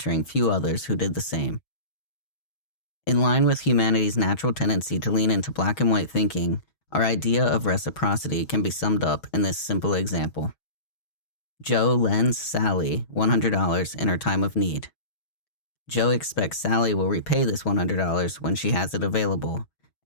few others who did the same. In line with humanity's natural tendency to lean into black and white thinking, our idea of reciprocity can be summed up in this simple example. Joe lends Sally $100 in her time of need. Joe expects Sally will repay this $100 when she has it available,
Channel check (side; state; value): right; late; 6.3 ms